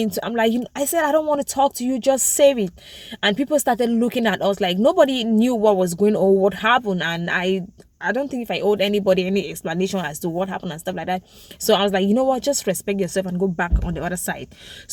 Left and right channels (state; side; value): identical; both; correlation 1.00